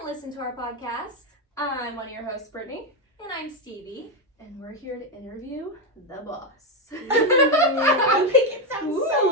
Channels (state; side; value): normal; both; correlation 0.07